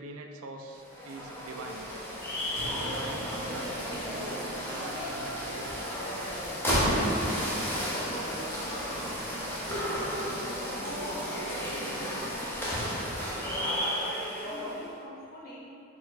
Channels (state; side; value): normal; both; correlation 0.16